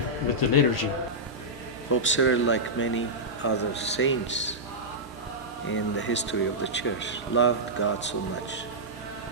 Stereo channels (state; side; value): normal; both; correlation -0.11